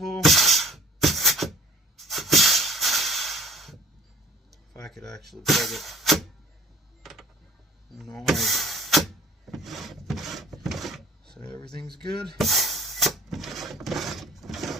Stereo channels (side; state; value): both; normal; correlation 0.47